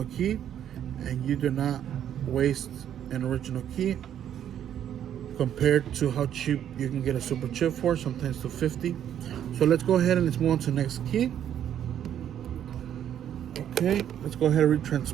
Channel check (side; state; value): left; quieter; 10.0 dB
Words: key, and you do not waste an original key. Compared to how cheap you can get a super chip for, sometimes to $50. So let's go ahead and let's move on to the next key. Okay, let's go ahead and read